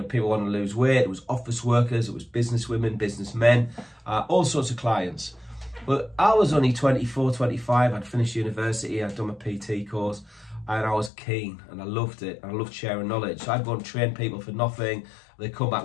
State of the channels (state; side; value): drops out; right; at 11.1 s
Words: people wanting to lose weight. It was office workers. It was business women, businessmen, all sorts of clients. But I was only 24, 25. I'd finished university. I'd done my PT course, and I was keen, and I loved it. I loved sharing knowledge. So I'd go and train people for nothing. They'd come back